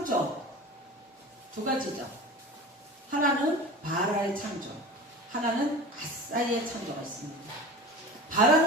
두 가지죠. 하나는 바라의 창조, 하나는 아사의 창조가 있습니다.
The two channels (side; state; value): both; normal; correlation 0.35